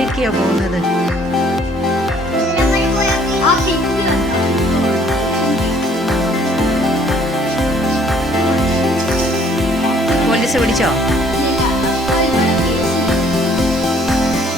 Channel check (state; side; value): normal; both; correlation 0.60